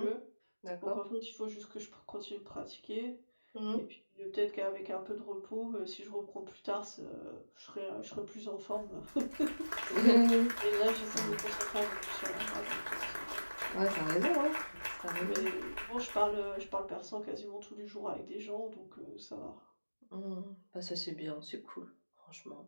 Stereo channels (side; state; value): both; inverted; correlation -1.00